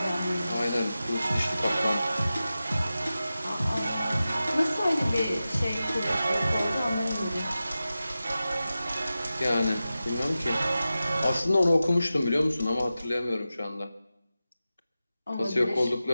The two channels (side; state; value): both; inverted; correlation -0.94